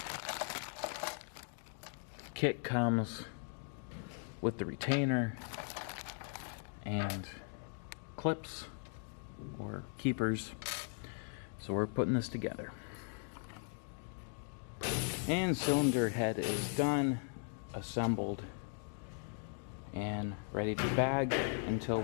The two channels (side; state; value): right; silent; 52 dB below the other